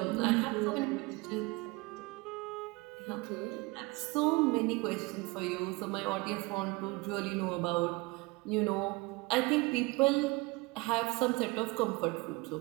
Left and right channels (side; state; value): left; quieter; 24.8 dB